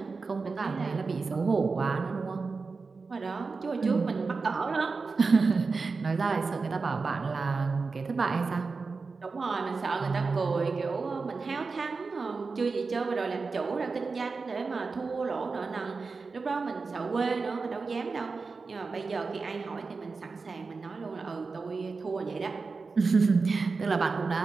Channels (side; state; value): left; quieter; 4.4 dB